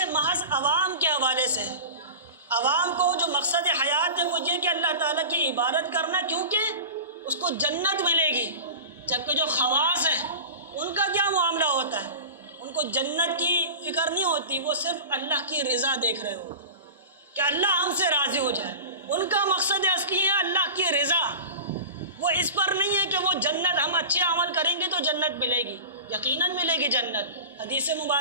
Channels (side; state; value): both; inverted; correlation -0.32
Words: محض عوام کے حوالے سے ہے۔ عوام کو جو مقصد حیات ہے وہ یہ کہ اللہ تعالیٰ کی عبادت کرنا، کیونکہ اس کو جنت ملے گی، جبکہ جو خواص ہیں ان کا کیا معاملہ ہوتا ہے؟ ان کو جنت کی فکر نہیں ہوتی، وہ صرف اللہ کی رضا دیکھ رہے ہوتے ہیں کہ اللہ ہم سے راضی ہو جائے۔ ان کا مقصد اصلی ہے اللہ کی رضا، وہ اس پر نہیں ہے کہ وہ جنت، ہم اچھے عمل کریں گے تو جنت ملے گی، یقیناً ملے گی جنت حدیث